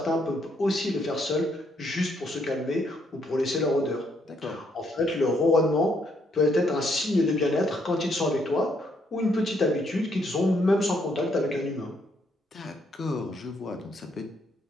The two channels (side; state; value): both; normal; correlation 0.73